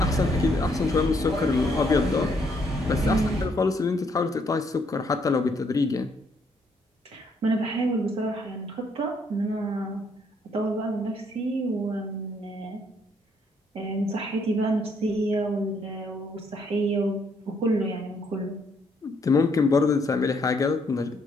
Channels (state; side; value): normal; both; correlation 0.70